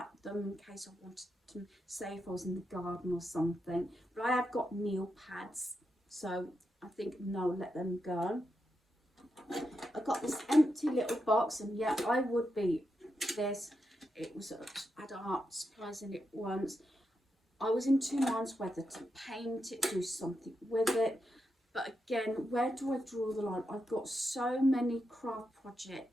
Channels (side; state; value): both; normal; correlation 0.85